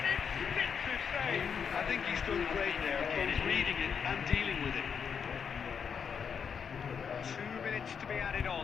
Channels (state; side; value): quieter; right; 6.8 dB